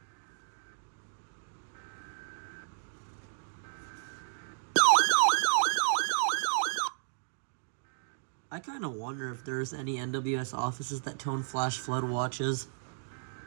I kind of wonder if there's any NWS offices that tone flash flood watches.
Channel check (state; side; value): silent; left; digital silence